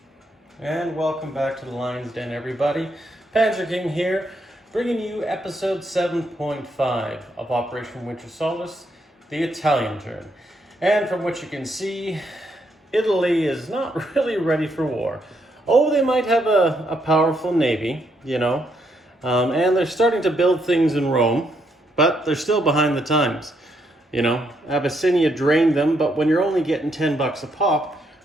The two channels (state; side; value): normal; both; correlation 0.76